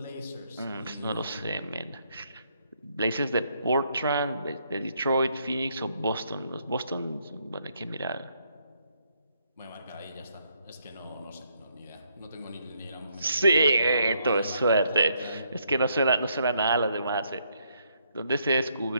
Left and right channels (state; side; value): inverted; both; correlation -0.74